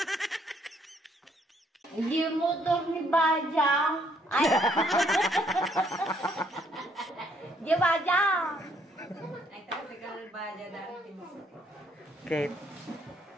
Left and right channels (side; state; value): both; normal; correlation 0.68